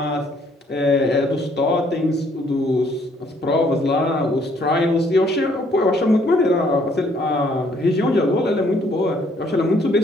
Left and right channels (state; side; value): normal; both; correlation 0.65